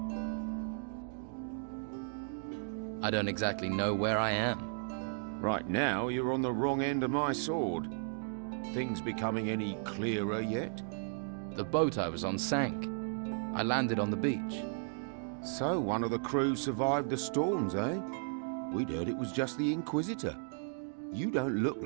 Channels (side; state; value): left; silent; digital silence